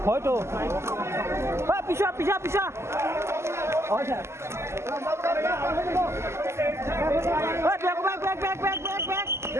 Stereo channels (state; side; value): late; left; 0.13 ms